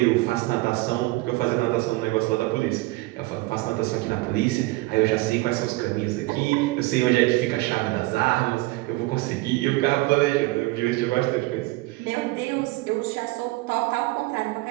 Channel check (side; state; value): left; quieter; 20.9 dB